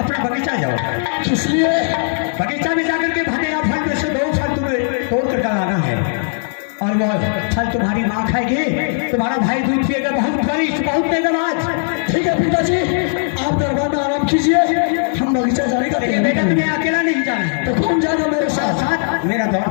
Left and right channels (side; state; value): right; silent; digital silence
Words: बगीचा जाओ। किस लिए? बगीचा में जाकर के भगेगा फल में से 2 फल तुम्हें तोड़ कर डालाना है और वो फल तुम्हारी माँ खाएगी, तुम्हारा भाई दूध पिएगा, बहुत बरिष्ठ बहुत तेजबाज। ठीक है पिताजी, आप दरबार में आराम कीजिए, हम बगीचा जाने का। बेटा तुम्हें अकेला नहीं जाना है। तो कौन जाएगा मेरे साथ? साथ मेरा